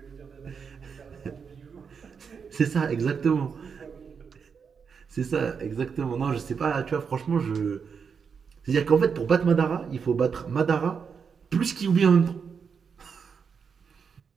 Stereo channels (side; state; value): left; quieter; 6.2 dB